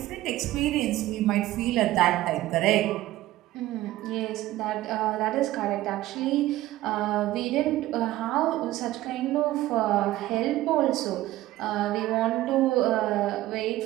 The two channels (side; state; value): left; quieter; 15.9 dB